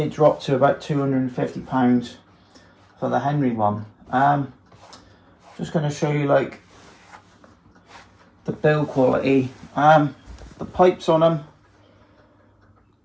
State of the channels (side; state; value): both; identical; correlation 1.00